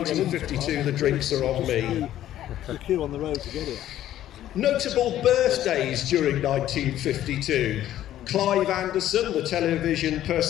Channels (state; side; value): quieter; right; 12.6 dB